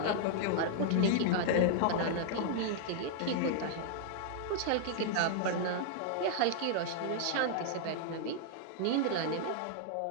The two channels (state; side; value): different; both; correlation -0.01